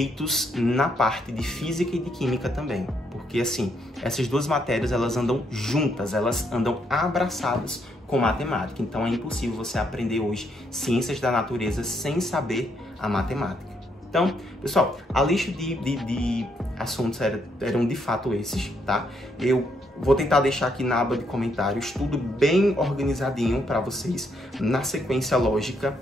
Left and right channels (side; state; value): both; normal; correlation 0.74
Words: na parte de física e de química também, porque assim, essas duas matérias elas andam juntas, elas andam abraçadas com matemática, então é impossível você aprender hoje ciências da natureza sem saber a matemática. Então, pessoal, a lista de assuntos eram de fato esses, tá? Eu vou tentar deixar aqui na aba de comentários tudo bem organizadinho para vocês, na sequência lógica,